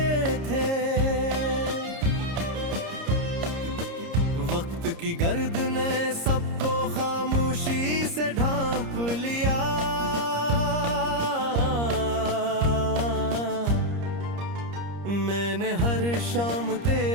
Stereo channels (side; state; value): left; late; 30 ms